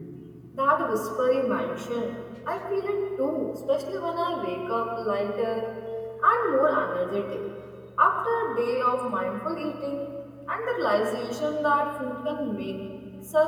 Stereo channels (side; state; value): both; identical; correlation 1.00